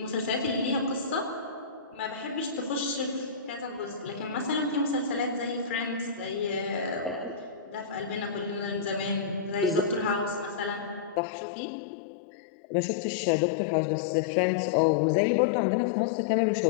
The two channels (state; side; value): drops out; right; at 11.2 s